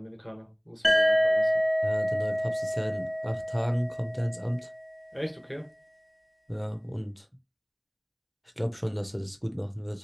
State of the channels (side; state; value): both; identical; correlation 1.00